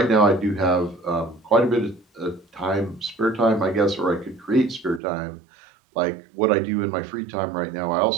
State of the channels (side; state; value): left; drops out; at 5.0 s